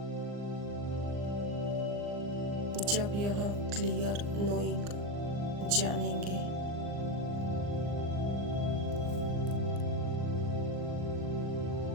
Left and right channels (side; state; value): left; late; 39 ms